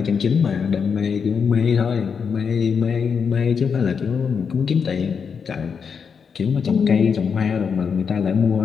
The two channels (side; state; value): right; quieter; 6.3 dB